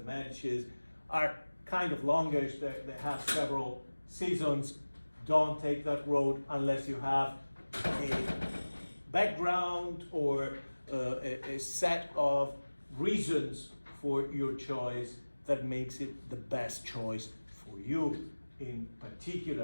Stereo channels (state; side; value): inverted; both; correlation -1.00